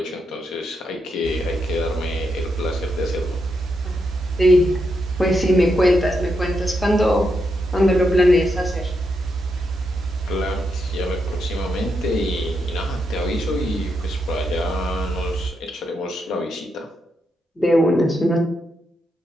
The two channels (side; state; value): both; normal; correlation 0.82